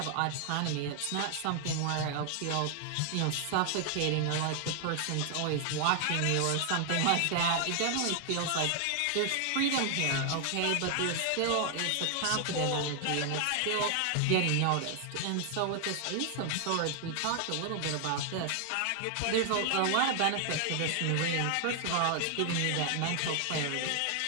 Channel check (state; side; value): different; both; correlation 0.00